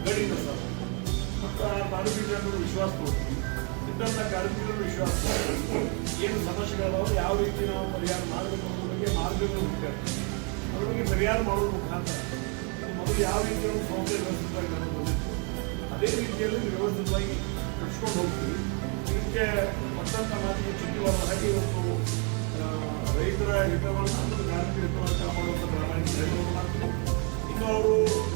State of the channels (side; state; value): left; quieter; 36.5 dB